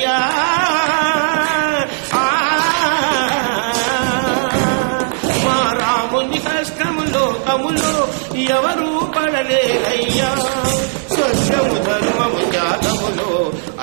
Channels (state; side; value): silent; left; digital silence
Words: మా రాముని కష్టము లోకములో ఎవరూ పడలేరయ్యా సత్యము ధర్మము జాతములో